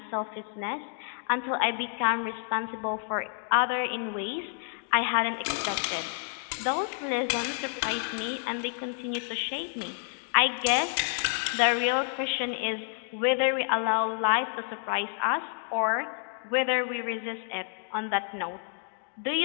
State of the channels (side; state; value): right; silent; 58 dB below the other